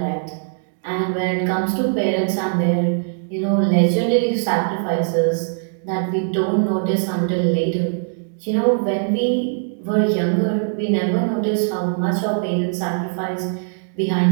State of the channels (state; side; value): silent; left; digital silence